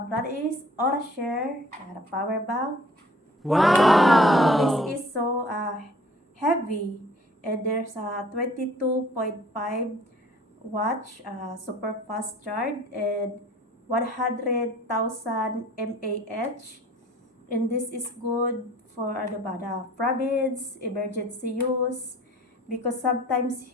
brand is Orashare, the power bank. Wow! This is so heavy, and there's a 22.5 watch super fast charge and 100,000 mAh. And this is good for ano ba, the province, emergency use. Because sometimes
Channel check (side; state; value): both; normal; correlation 0.53